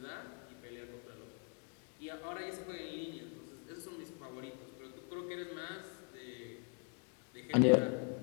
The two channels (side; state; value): right; quieter; 38.9 dB